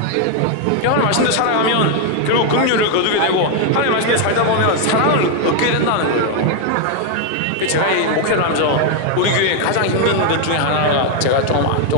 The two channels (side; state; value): both; different; correlation 0.00